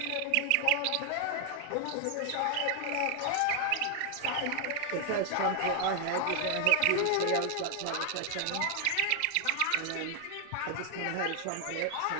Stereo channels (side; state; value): both; different; correlation 0.00